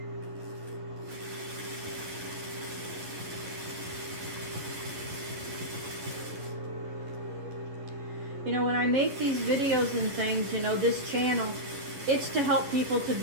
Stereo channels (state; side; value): late; left; 11 ms